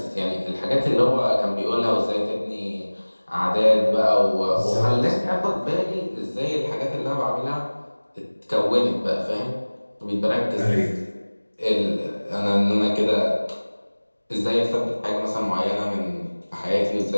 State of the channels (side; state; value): both; inverted; correlation -1.00